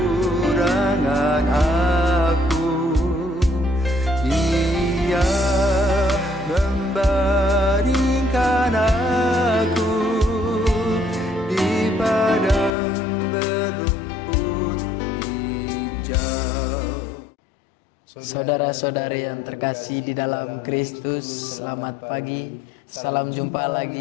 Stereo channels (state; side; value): drops out; right; at 12.7 s